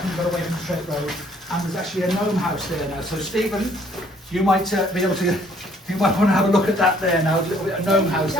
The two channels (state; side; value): normal; both; correlation 0.62